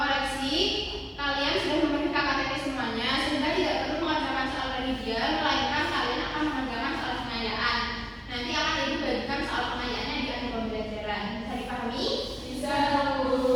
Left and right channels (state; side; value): identical; both; correlation 1.00